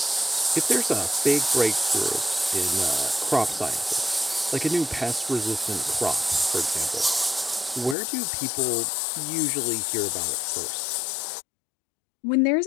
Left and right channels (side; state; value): right; drops out; at 8.0 s